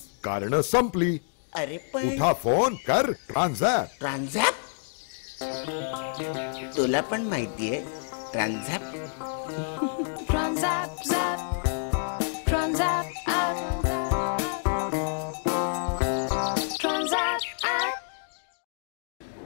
कारणं संपली. अरे पण उठा, फोन कर, ट्रान्झॅक्ट. ट्रान्झॅक्ट? तुला पण माहितीये transact? Transact, zap, transact, app, transact, app.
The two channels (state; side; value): silent; right; digital silence